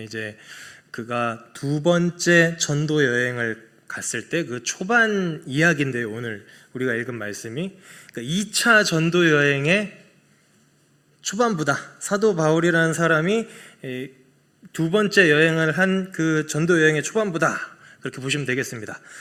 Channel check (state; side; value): identical; both; correlation 1.00